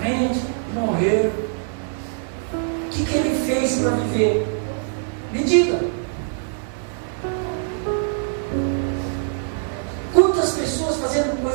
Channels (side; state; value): left; silent; digital silence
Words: morreram. O que ele fez para viver? Me diga. Quantas pessoas fazendo